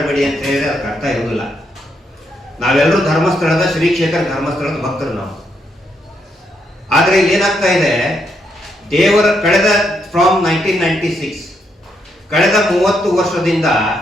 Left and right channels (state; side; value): normal; both; correlation 0.77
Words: ಅಂತ ಹೇಳಿದ್ರೆ ಅದಕ್ಕೆ ಅರ್ಥ ಇರುವುದಿಲ್ಲ. ನಾವೆಲ್ಲರೂ ಧರ್ಮಸ್ಥಳದ ಶ್ರೀ ಕ್ಷೇತ್ರ ಧರ್ಮಸ್ಥಳದ ಭಕ್ತರು ನಾವು. ಆದ್ರೆ ಏನಾಗ್ತಾ ಇದೆ, ದೇವರ ಕಳೆದ ಫ್ರಾಮ್ 1996 ಕಳೆದ 30 ವರ್ಷದಿಂದ